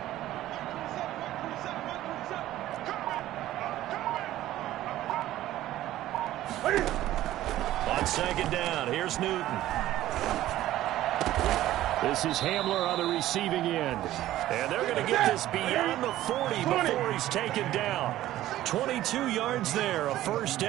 On 2nd down, here's Newton. This is Hamler on the receiving end. And they're going to get this beyond the 40 before he's taken down. 22 yards there, a first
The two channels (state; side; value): quieter; left; 14.3 dB